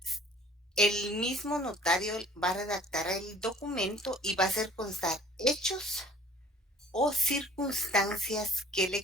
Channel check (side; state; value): both; normal; correlation 0.52